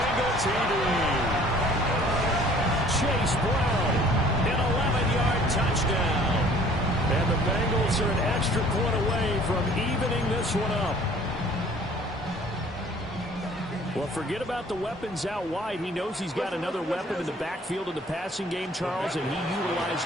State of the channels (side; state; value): both; normal; correlation 0.53